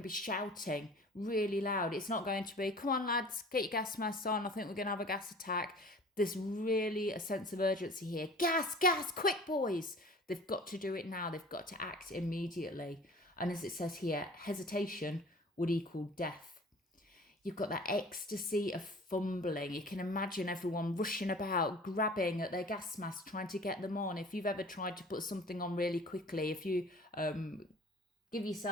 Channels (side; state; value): both; normal; correlation 0.45